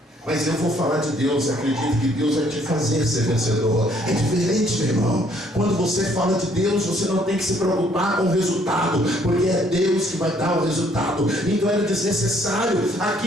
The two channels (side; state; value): both; normal; correlation 0.64